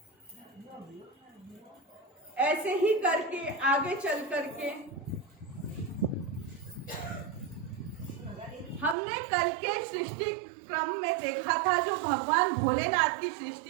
ऐसे ही करके आगे चल करके हमने कल के सृष्टि क्रम में देखा था, जो भगवान भोलेनाथ की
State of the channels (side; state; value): left; drops out; at 9.0 s